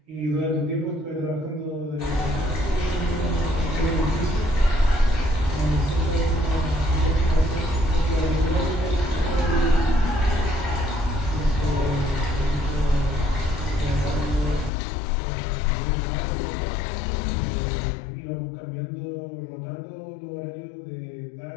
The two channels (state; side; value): drops out; right; at 14.7 s